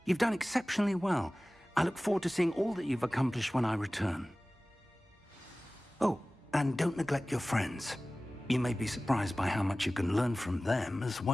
You've done exceptionally well. I look forward to seeing all that you've accomplished when I return. Oh, and don't neglect your friends. You may be surprised by how much you can learn from them as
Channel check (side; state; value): both; normal; correlation 0.97